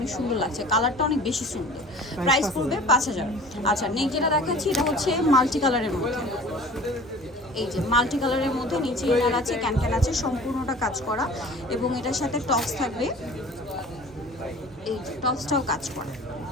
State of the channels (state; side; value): normal; both; correlation 0.44